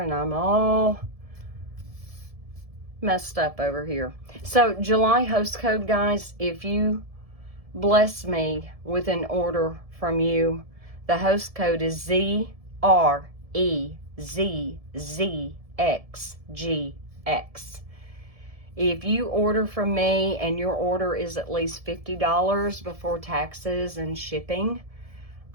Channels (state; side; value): late; left; 1.7 ms